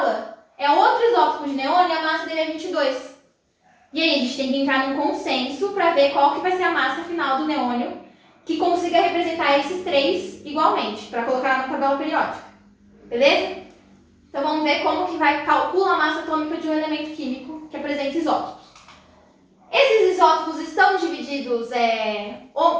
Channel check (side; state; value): both; identical; correlation 1.00